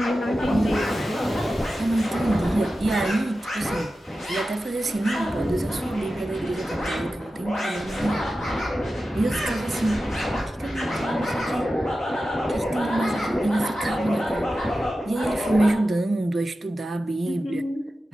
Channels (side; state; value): both; normal; correlation 0.93